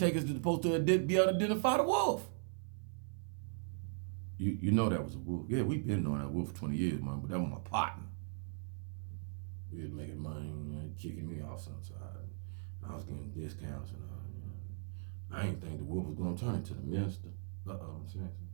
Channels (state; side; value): silent; left; 52 dB below the other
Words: are supposed to be able to identify the wolf. You know that was a wolf. Yeah, we've been knowing that wolf for 20 years, man, but that was my partner. He was making money, kicking me off sometimes. I was getting discounts and all. I didn't think the wolf was going to turn into the minister. I'm saying,